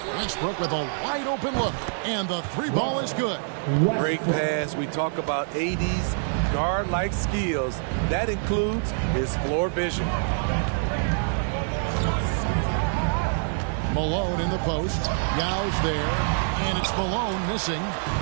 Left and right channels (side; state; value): left; silent; digital silence